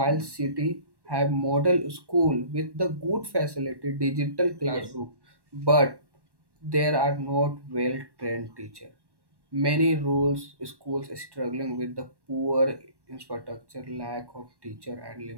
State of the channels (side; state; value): left; late; 1.1 ms